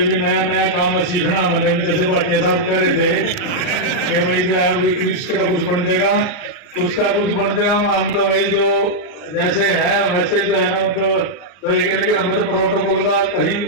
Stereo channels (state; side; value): late; right; 39 ms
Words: नया नया काम है सीखना, मैंने भी जैसे भाटिया साहब कह रहे थे कि भाई जो है कृष्ण का कुछ बन जाएगा, उसका कुछ बन जाएगा। हम तो भाई जो जैसे है वैसे जो है ना, मतलब लेकिन हमें तो प्रोटोकॉल का कहीं